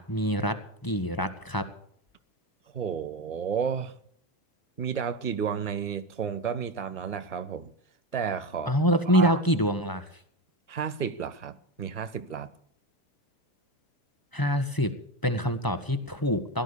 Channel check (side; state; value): right; late; 1.0 ms